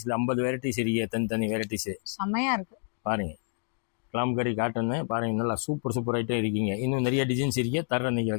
50 வெரைட்டிஸ் இருக்கு. தனி வெரைட்டிஸ் செமையா இருக்கு பாருங்க. கலாம்கரி காட்டன் பாருங்க. நல்லா சூப்பர் ஐட்டம் இருக்கீங்க. இன்னும் நிறைய டிசைன்ஸ் இருக்கு. தர நீங்க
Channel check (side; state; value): right; silent; digital silence